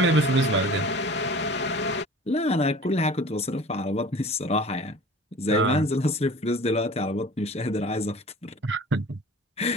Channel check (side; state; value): both; normal; correlation 0.43